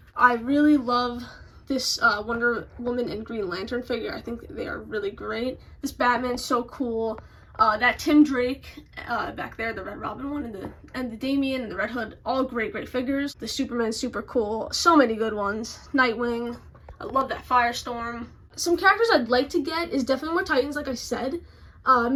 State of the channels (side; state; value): both; identical; correlation 1.00